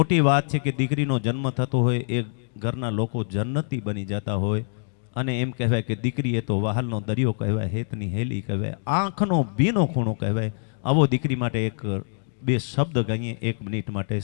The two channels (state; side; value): silent; right; digital silence